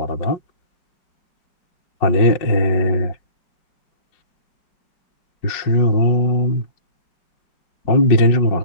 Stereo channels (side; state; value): right; late; 5.5 ms